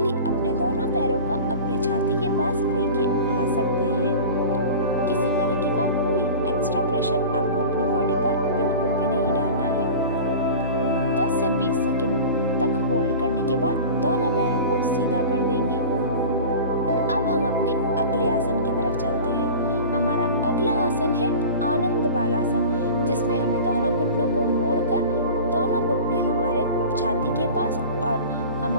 अपने दोनों पैरों को अपने छाती के पास लेके आ सकते हैं। किसी तरीके का कोई एक्स्ट्रा प्रेशर आपको अपनी बॉडी पर बिल्कुल भी नहीं डालना है। 10 से 20 सेकंड तक होल्ड करने के बाद दोनों पैरों को सीधा कर देंगे। अब हम अपने अगले आसन की तरफ चलते हैं। हमारा अगला आसन है आनंद बालासन, जिसमें हमें दोनों घुटनों को मोड़कर दोनों घुटने हमारे छाती के पास और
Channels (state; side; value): inverted; both; correlation -0.36